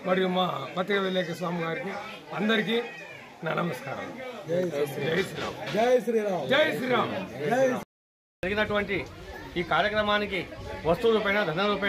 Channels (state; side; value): identical; both; correlation 1.00